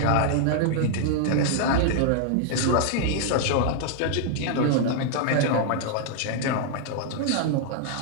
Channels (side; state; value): both; different; correlation -0.01